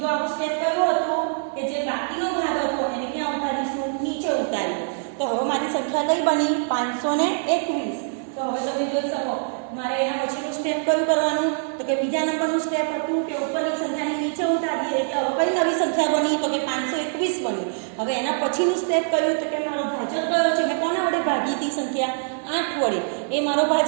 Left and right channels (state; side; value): silent; left; 63 dB below the other